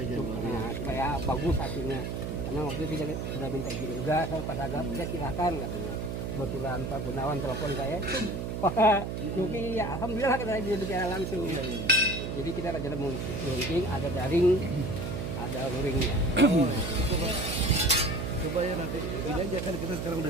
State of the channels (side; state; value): right; noise; hum, 4 dB below the sound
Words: Januari. Nah, supaya bagus hasilnya. Karena waktu itu kita sudah minta izin juga sama Pak Sagap, ya silahkan katanya. Kebetulan Pak Gunawan telepon saya, Pak Nuki ya alhamdulillah katanya dia bicara langsung. Jadi kita rencana mau launching, ada daring, ada luringnya. Coba ya nanti ini aja kan kita sekarang